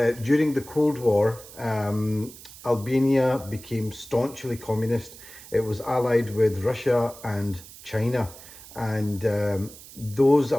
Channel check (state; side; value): noise; right; hiss, 18 dB below the sound